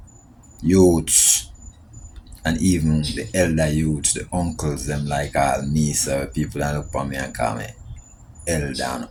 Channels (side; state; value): both; identical; correlation 1.00